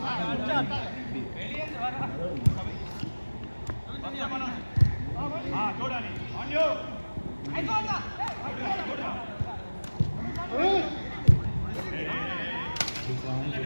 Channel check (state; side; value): inverted; both; correlation -1.00